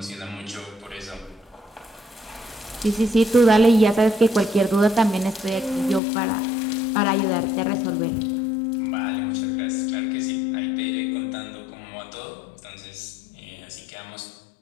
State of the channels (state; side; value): drops out; right; at 6.0 s